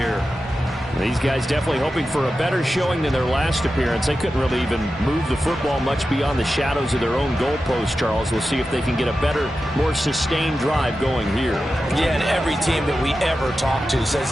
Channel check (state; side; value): normal; both; correlation 0.92